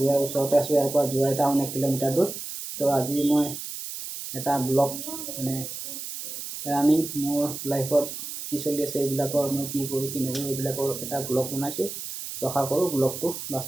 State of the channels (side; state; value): right; noise; hiss, 8 dB below the sound